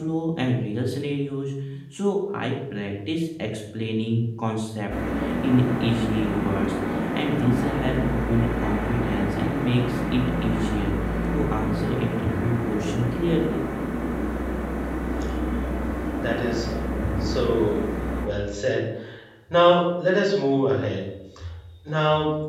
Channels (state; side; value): identical; both; correlation 1.00